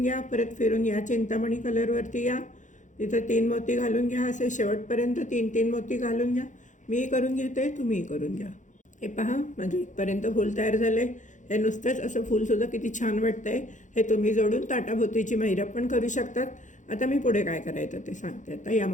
घ्या. परत फिरून या चिंतामणी कलरवरती या, तिथं 3 मोती घालून घ्या. असे शेवटपर्यंत 3-3 मोती घालून घ्या. मी करून घेते, तुम्ही करून घ्या. हे पहा, माझं इथपर्यंत फूल तयार झालं आहे. हे नुसतंच असं फूलसुद्धा किती छान वाटतं आहे. हे तुम्ही जोडून ताटाभोवतीची महिरप पण करू शकतात. आता मी पुढे काय करायचं ते सांगते. आता या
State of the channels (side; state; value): right; late; 0.36 ms